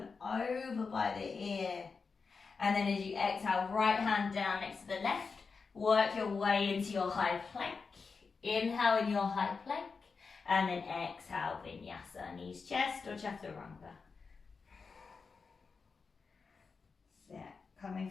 over by the ear. And then as you exhale, right hand down next to the left, work your way into your high plank. Inhale in your high plank, and then exhale, vinyasa, knees chest or chaturanga. So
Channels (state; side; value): quieter; right; 4.9 dB